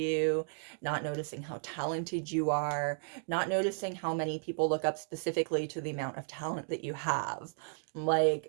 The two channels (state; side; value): silent; left; digital silence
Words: not noticing how talented you are, not noticing how many people look up specifically to the amount of talent that you have.